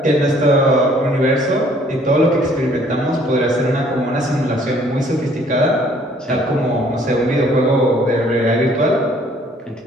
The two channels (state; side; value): normal; both; correlation 0.60